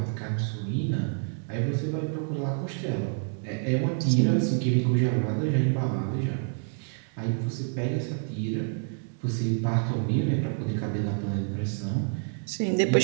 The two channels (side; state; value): left; silent; 56 dB below the other